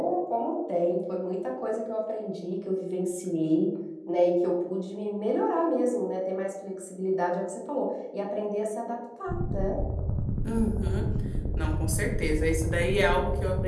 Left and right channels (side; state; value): both; identical; correlation 1.00